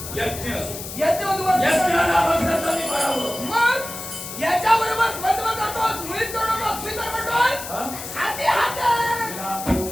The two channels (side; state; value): left; noise; hiss, 9 dB below the sound